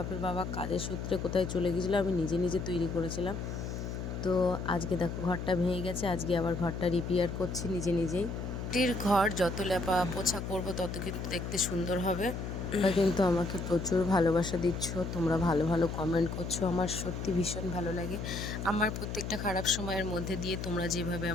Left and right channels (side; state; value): left; noise; hum, 5 dB below the sound